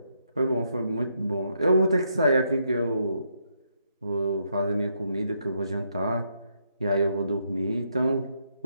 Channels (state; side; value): inverted; both; correlation -0.77